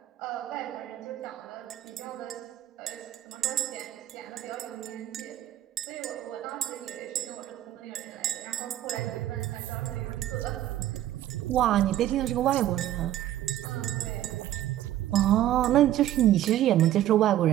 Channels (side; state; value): left; quieter; 12.9 dB